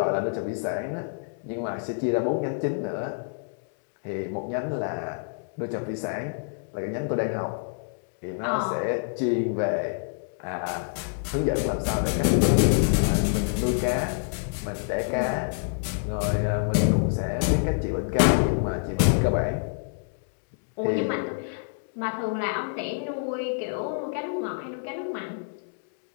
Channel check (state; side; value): silent; right; digital silence